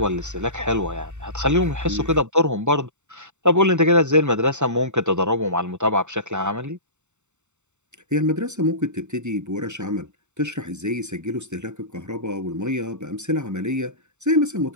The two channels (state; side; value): late; left; 0.84 ms